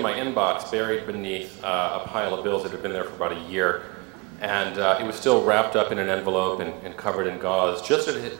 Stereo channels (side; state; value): left; quieter; 27.7 dB